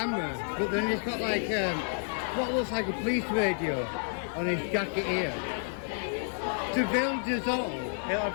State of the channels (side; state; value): right; silent; digital silence